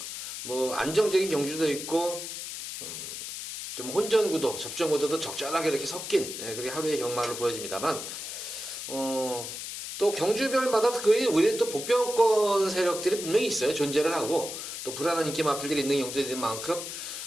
뭐 안정적인 경주도 있고 좀 혼전 구도, 접전 구도도 적절하게 이렇게 섞인 그렇게 하루의 경마를 보여집니다만 또 경주별마다 우리 또 복병권 세력들이 분명히 있어요. 존재를 하고 또 불안한 인기 마필들이 있는 경주들인 만큼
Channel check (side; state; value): left; noise; hiss, 7 dB below the sound